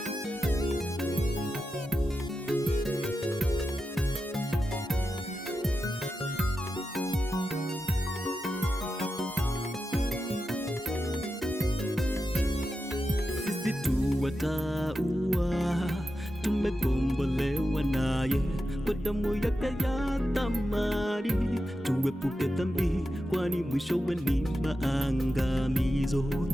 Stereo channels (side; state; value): both; normal; correlation 0.90